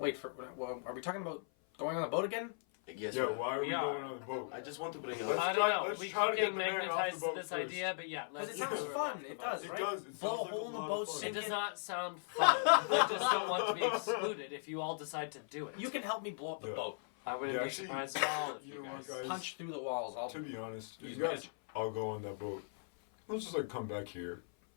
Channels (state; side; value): silent; right; 52 dB below the other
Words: well, are we talking about going on the boat again? Yes, yeah, but why are we We are. going on the boat? I just want to bring Let's up. I try- don't know. let's We try to keep get getting the man off the magnetized to boat this first. idea, but yeah, Because let's it sounds do fun. It does, It right? does. It Blow a sounds like hole a in the lot boat, of fun. It sink does it. not sound fun. I just don't want to be excluded if you all decide to do it. You can help me blow up the Yeah. boat. I wouldn't Yeah, be actually, surprised at all if you you know what, guys. guys? Punch through the walls. I'll To be honest, use you guys magic. all go on that boat. Let's just like come back here,